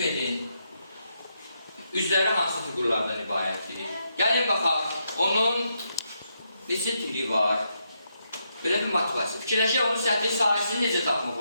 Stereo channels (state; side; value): inverted; both; correlation -0.80